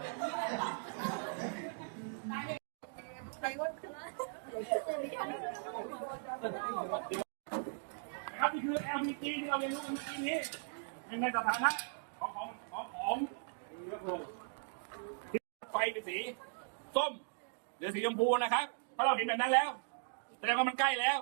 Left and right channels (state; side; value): silent; left; digital silence